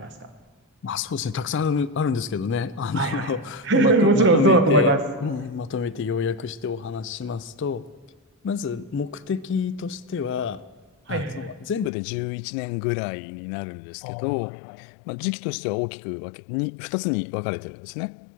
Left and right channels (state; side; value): drops out; right; at 11.9 s